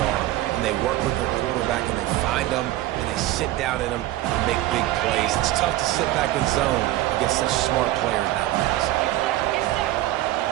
are, and they work with their quarterback, and they find them, and they sit down in them and make big plays. It's tough to sit back in zone against such smart players nowadays.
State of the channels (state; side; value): quieter; left; 15.6 dB